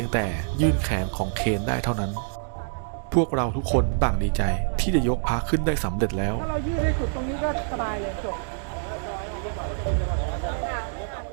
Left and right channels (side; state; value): left; silent; digital silence